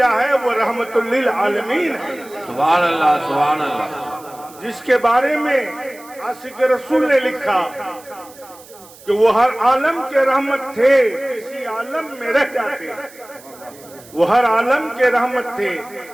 ہے وہ رحمت للعالمین ہے۔ سبحان اللہ سبحان اللہ۔ جس کے بارے میں عاشق رسول نے لکھا کہ وہ ہر عالم کے رحمت تھے، کسی عالم میں رہ جاتے۔ وہ ہر عالم کے رحمت تھے،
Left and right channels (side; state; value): right; noise; hiss, 22 dB below the sound